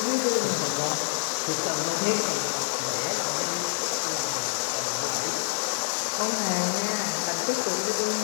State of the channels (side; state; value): right; silent; digital silence